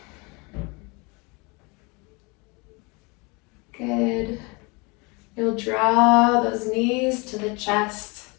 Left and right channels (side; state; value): right; quieter; 28.7 dB